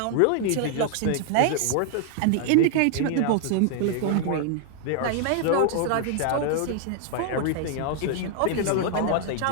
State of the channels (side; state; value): both; different; correlation 0.00